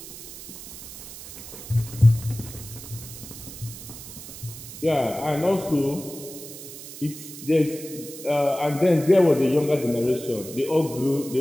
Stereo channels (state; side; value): noise; right; hiss, 13 dB below the sound